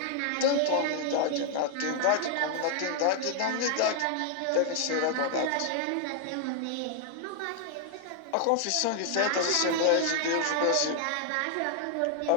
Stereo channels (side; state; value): both; different; correlation 0.00